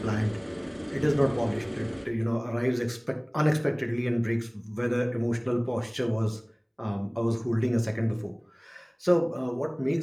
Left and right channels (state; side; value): identical; both; correlation 1.00